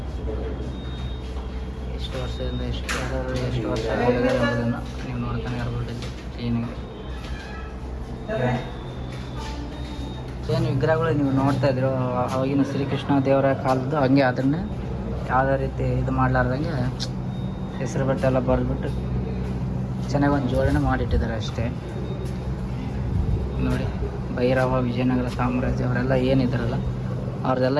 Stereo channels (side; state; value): both; identical; correlation 1.00